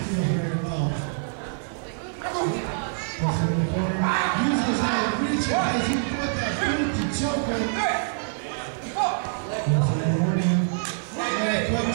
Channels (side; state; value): left; silent; digital silence